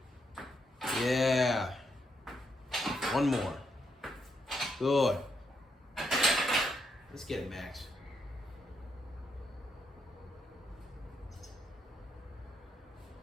Yeah. One more. Good. Let's get it, Max.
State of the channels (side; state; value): both; normal; correlation 0.79